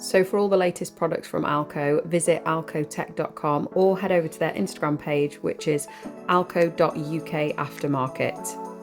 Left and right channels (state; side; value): identical; both; correlation 1.00